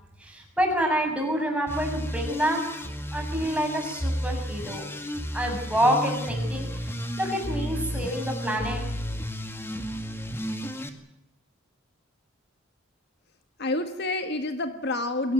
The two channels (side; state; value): both; normal; correlation 0.60